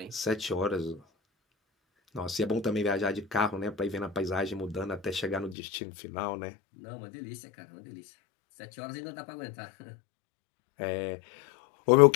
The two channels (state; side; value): drops out; right; at 5.6 s